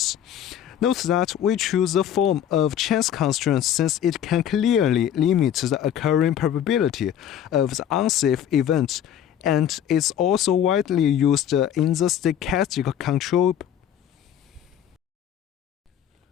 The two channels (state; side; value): quieter; right; 9.9 dB